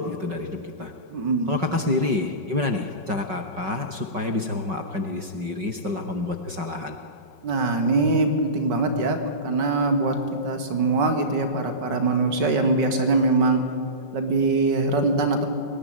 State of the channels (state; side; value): late; left; 5.3 ms